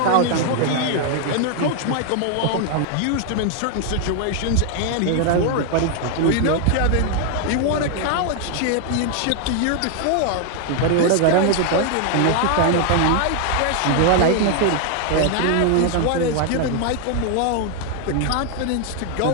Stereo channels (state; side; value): different; both; correlation 0.00